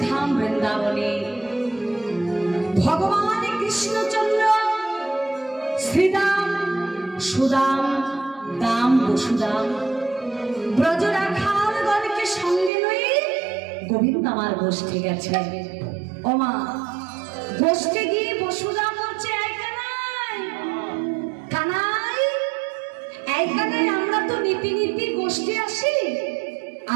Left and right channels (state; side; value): drops out; left; at 12.7 s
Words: वृंदावने भगवान कृष्णचंद्र श्रीदाम सुदाम दाम वसुदाम ब्रजराखालगणके संगे लये गोविंद आमार गोष्ठे गेছে ও মা গোষ্ঠে গিয়ে বসুদাম বলছে আমরা তো নীতি নীতি গোষ্ঠী আসি